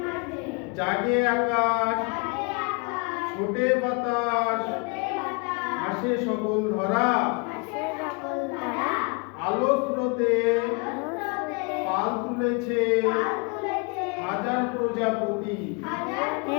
জাগে আকাশ ছোটে বাতাস হাসে সকল ধরা আলো স্রোতে পাল তুলেছে হাজার প্রজাপতি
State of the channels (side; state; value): right; quieter; 32.0 dB